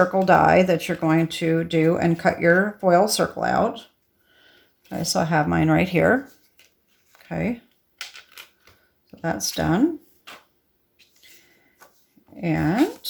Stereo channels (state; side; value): identical; both; correlation 1.00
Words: die that you're going to do and cut your foil circle out. Okay, so I have mine right here. Okay, so that's done. And